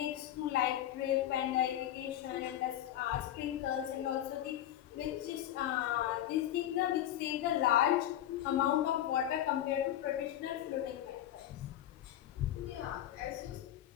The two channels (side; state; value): right; quieter; 12.0 dB